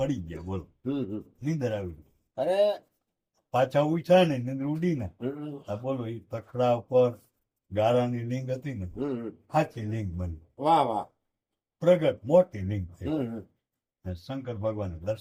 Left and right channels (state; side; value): identical; both; correlation 1.00